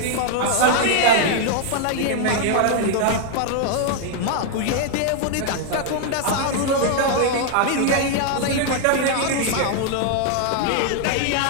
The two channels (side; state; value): both; different; correlation 0.00